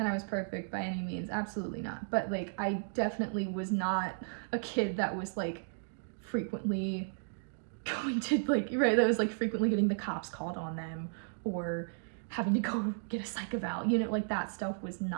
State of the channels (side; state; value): left; silent; digital silence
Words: I was perfect by any means, absolutely not, but, like, I definitely was not a kid that was, like, frequently going to, like, right, that was, like, frequently getting the cops called on them, or having to go get a psych eval, you know, like, that stuff was